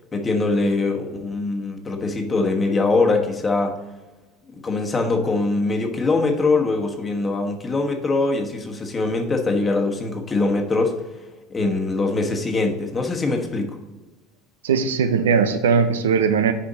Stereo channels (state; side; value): normal; both; correlation 0.46